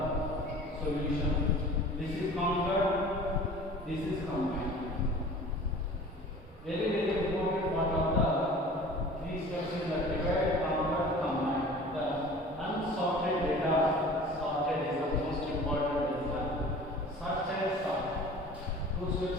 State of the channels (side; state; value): both; normal; correlation 0.43